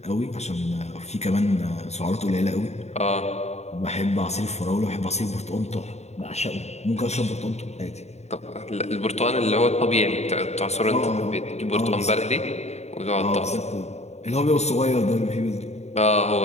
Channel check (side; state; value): right; late; 0.32 ms